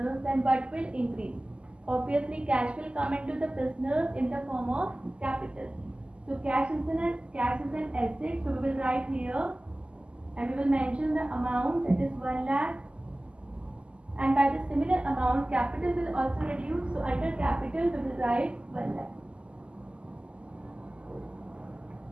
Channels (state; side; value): late; left; 0.053 ms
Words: then what will increase? Obviously cash will come into the business in the form of capital. So cash is an asset. So we will write here and we will mention the amount, that is 1 lakh, and by the similar amount capital will also reduce. So under capital we will write 1 lakh.